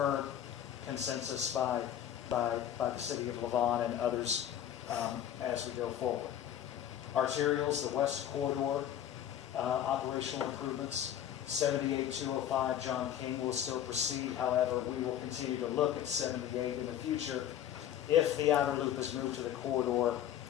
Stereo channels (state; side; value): quieter; right; 10.6 dB